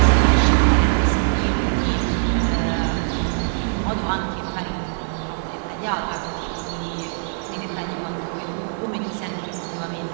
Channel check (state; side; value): silent; left; digital silence